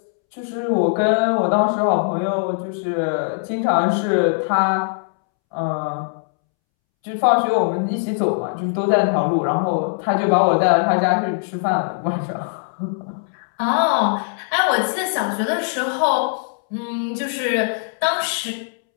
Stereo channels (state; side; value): silent; right; 65 dB below the other